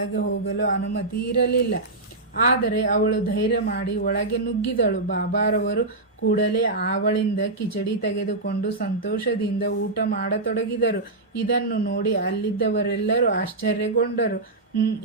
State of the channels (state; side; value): quieter; left; 3.0 dB